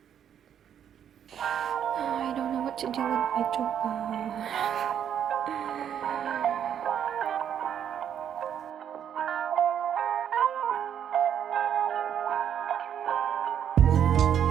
I don't know what to do with my job.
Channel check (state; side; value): quieter; left; 9.1 dB